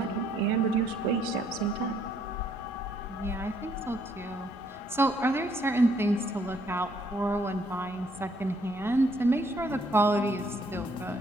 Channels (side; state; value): both; normal; correlation 0.68